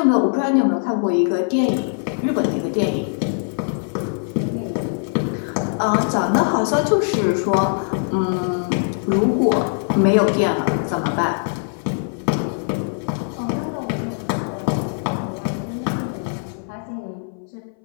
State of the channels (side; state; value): right; silent; 61 dB below the other